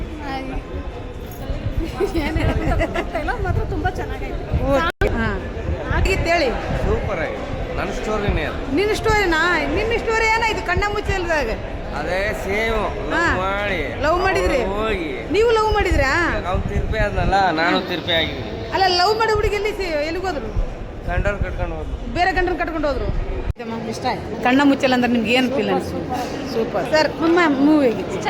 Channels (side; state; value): both; identical; correlation 1.00